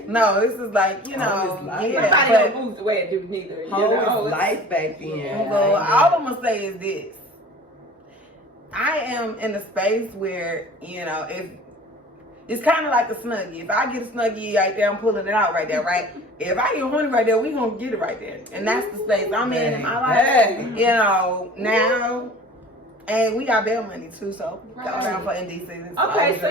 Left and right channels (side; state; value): both; normal; correlation 0.44